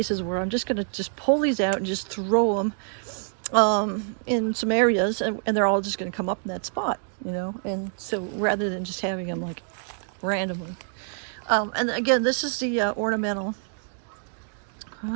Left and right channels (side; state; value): left; silent; 61 dB below the other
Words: where I'm just gonna just pull these out and just throw them in some areas, and they're all just gonna come up in that spot, you know. And so rather than just having them like randomly. And again, this is the ornamental.